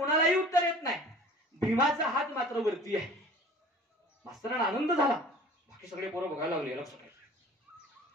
उत्तर येत नाही. भीमाचा हात मात्र वरती आहे. मास्तरांना आनंद झाला. बाकी सगळे पोरं बघायला लागले.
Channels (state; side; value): normal; both; correlation 0.45